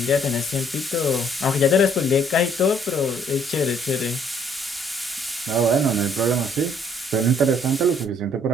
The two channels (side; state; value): both; normal; correlation 0.63